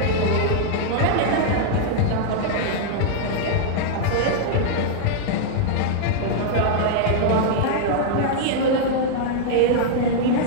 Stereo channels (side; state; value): both; different; correlation -0.01